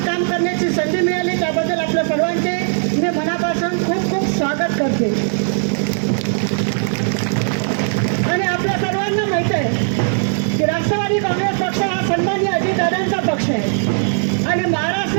काम करण्याची संधी मिळाली. त्याबद्दल आपल्या सर्वांचे मी मनापासून खूप खूप स्वागत करते. आणि आपल्या सर्वांना माहीत आहे की राष्ट्रवादी काँग्रेस पक्ष हा सन्माननीय अजितदादांचा पक्ष आहे. आणि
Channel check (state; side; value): silent; left; digital silence